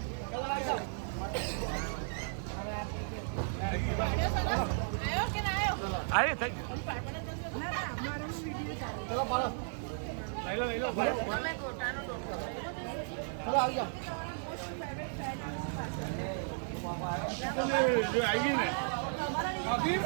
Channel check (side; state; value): left; silent; digital silence